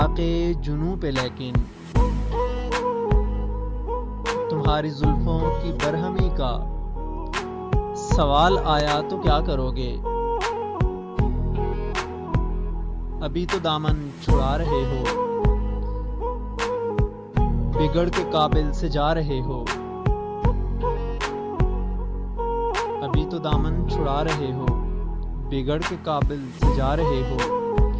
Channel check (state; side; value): identical; both; correlation 1.00